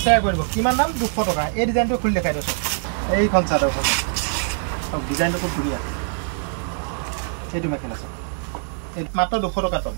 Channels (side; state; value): left; silent; digital silence